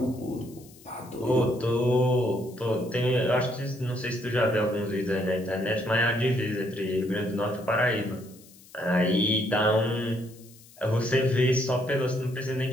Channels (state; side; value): noise; left; hiss, 24 dB below the sound